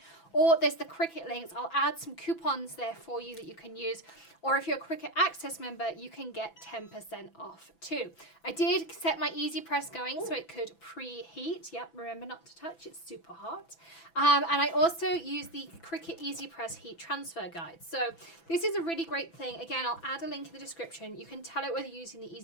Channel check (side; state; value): right; late; 6.0 ms